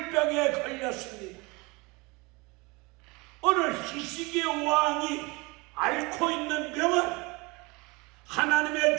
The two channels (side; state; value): left; quieter; 25.8 dB